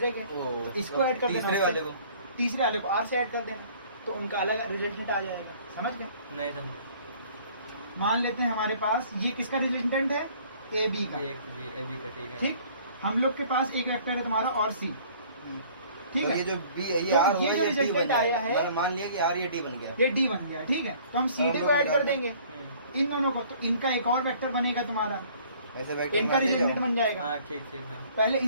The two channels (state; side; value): inverted; both; correlation -0.54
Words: के, तो इसको ऐड कर देना, तीसरे वाले को तीसरे वाले को आर से ऐड कर देना, तो उनका अलग रिजल्टेंट आ जाएगा। समझ गए? नहीं समझे। मान लेते हैं हमारे पास ये किसका रिजल्टेंट है, ए बी का, ए बी का ठीक है। ठीक। हम लोग के पास एक वेक्टर है तुम्हारा और सी, ठीक तो है। ये जो बी ये तो आर ये हुआ जो ये डी रिजल्टेंट बन आया गया है, मतलब मान लिया कि आर ये डी बन गया, ये डी बन गया, ठीक है। तो हम सी डी हम को लोग ऐड कर निकाल देंगे इन दोनों को, तो इनका एक और वेक्टर बनेगा तुम्हारा, ऐसे वेक्टर इनका में ले रिजल्टेंट जाओ। बन जाएगा। हाँ ठीक ठीक है। पहले